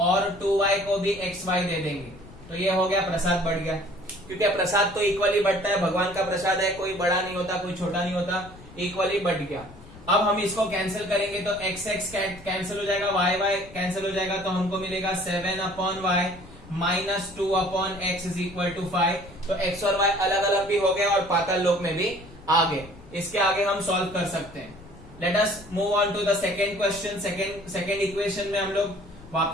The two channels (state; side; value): noise; left; rumble, 19 dB below the sound